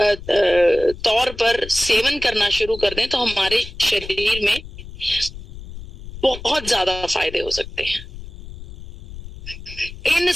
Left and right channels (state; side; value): noise; left; rumble, 14 dB below the sound